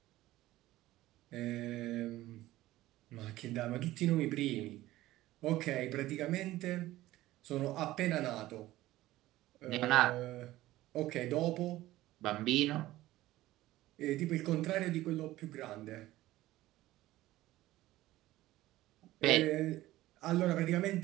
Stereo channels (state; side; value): quieter; left; 16.2 dB